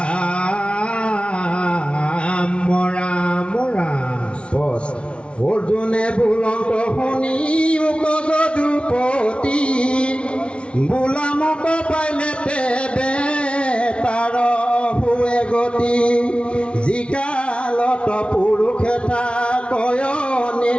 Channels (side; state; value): right; late; 0.059 ms